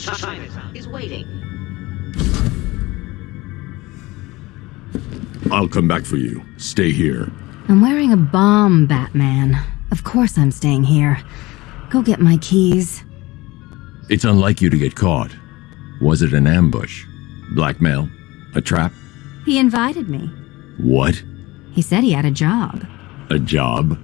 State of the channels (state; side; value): quieter; right; 20.8 dB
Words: I'll come back for you. Stay here. I'm wearing a bomb, Batman. Of course I'm staying here. Go get my keys. It's unlike you to get caught. Was it an ambush? Blackmail? A trap? He invited me. What? He said he had a job. A job?